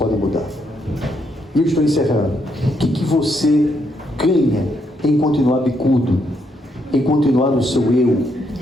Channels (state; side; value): normal; both; correlation 0.76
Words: mudar. E eu estou encerrando. O que você ganha em continuar bicudo, em continuar no seu eu,